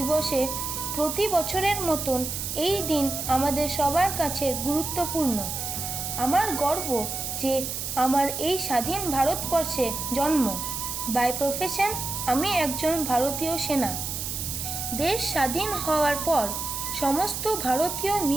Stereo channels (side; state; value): right; noise; hiss, 4 dB below the sound